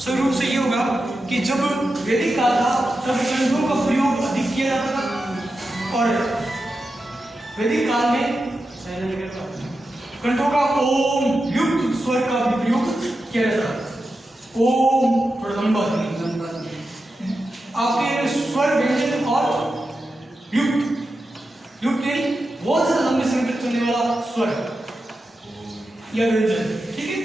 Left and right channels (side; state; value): both; normal; correlation 0.90